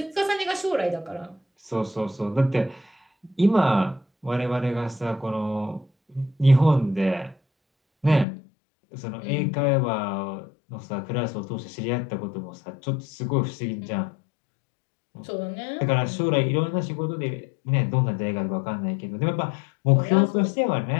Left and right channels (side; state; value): right; drops out; at 8.2 s